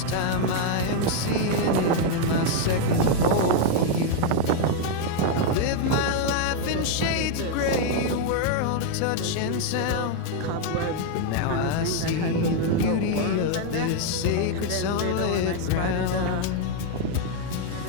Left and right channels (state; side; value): different; both; correlation 0.01